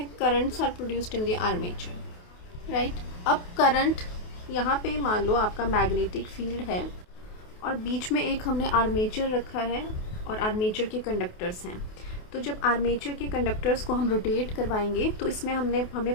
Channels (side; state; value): right; late; 28 ms